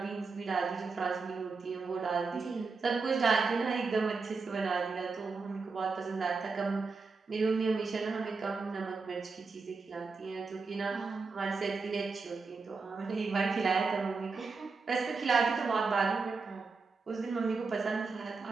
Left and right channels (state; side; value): quieter; left; 4.4 dB